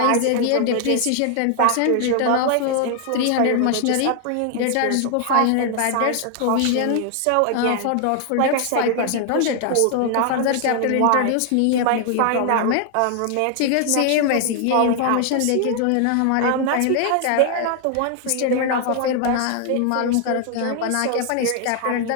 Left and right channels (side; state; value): both; different; correlation 0.00